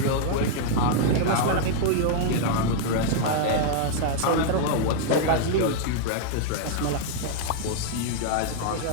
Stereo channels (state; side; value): different; both; correlation -0.01